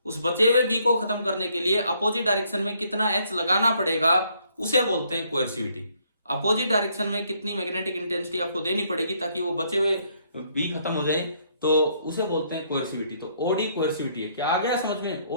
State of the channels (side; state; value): both; inverted; correlation -0.69